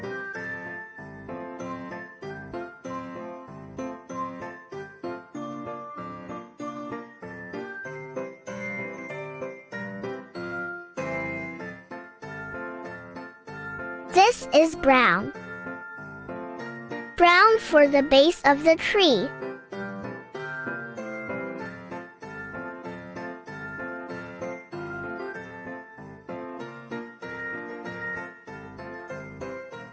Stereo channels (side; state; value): both; identical; correlation 1.00